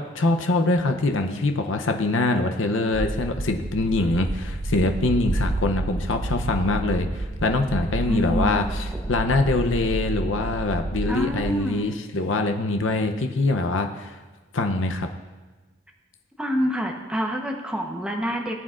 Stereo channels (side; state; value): both; normal; correlation 0.56